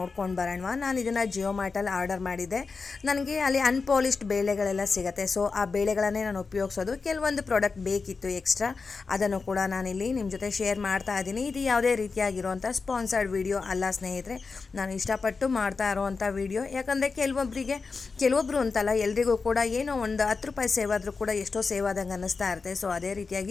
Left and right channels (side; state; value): right; quieter; 4.5 dB